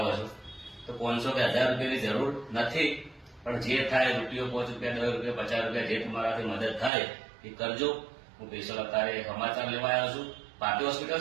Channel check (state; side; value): drops out; left; at 6.9 s